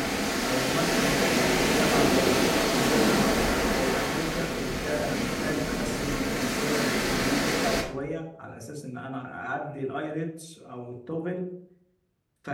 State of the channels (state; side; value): identical; both; correlation 1.00